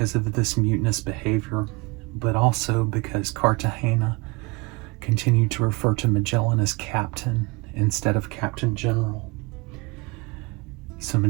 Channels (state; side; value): quieter; left; 26.9 dB